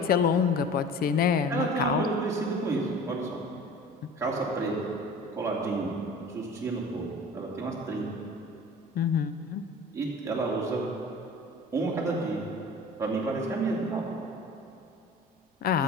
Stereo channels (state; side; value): normal; both; correlation 0.42